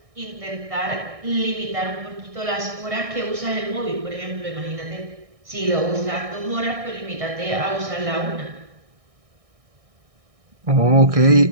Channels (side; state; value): left; late; 1.6 ms